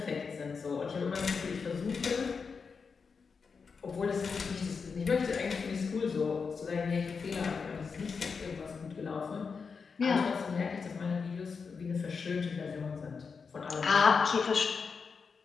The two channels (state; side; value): quieter; right; 5.4 dB